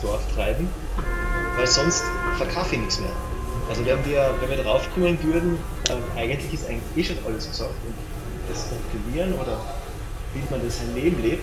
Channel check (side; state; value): both; identical; correlation 1.00